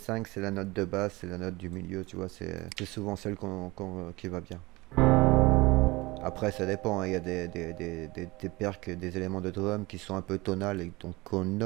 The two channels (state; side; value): quieter; left; 22.2 dB